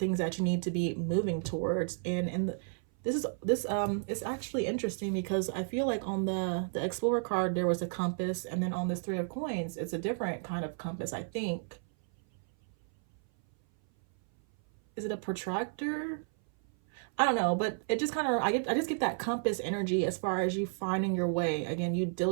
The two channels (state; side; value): silent; left; 56 dB below the other